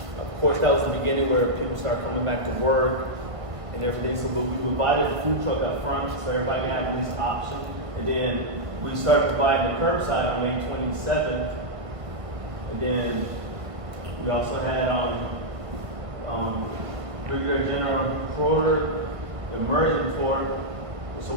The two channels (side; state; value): left; late; 1.5 ms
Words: Of course, that was the beginning where people start coming back to work and everything. So we provided the food truck up front so everybody can have at least option. And then we started providing the curbside on May 27th. And then we also had Brigadier General Schroeder, the immersion tour. So